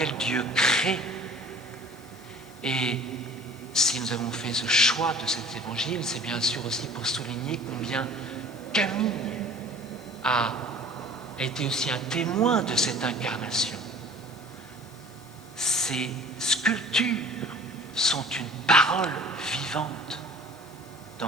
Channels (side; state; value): left; noise; hiss, 26 dB below the sound